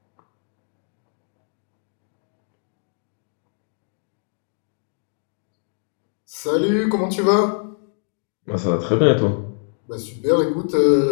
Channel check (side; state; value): right; silent; digital silence